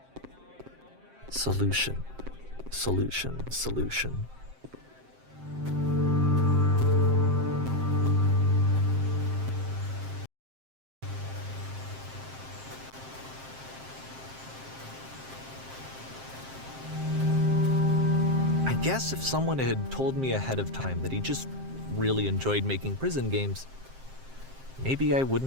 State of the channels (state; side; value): late; left; 7.6 ms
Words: Solution. I guess if someone had told me ahead of time that he just really enjoyed making prison games, maybe I